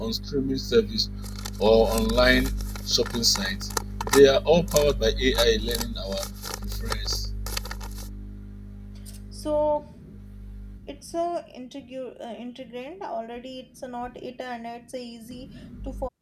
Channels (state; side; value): identical; both; correlation 1.00